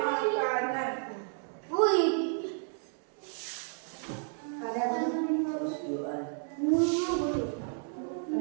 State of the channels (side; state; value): left; silent; 57 dB below the other